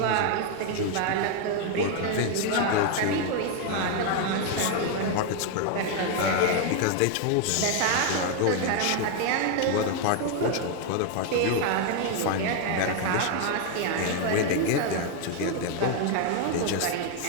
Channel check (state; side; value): different; both; correlation 0.01